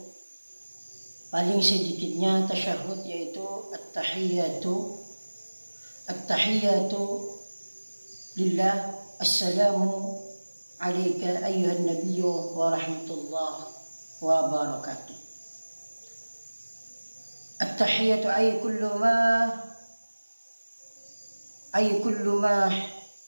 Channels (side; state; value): both; inverted; correlation -1.00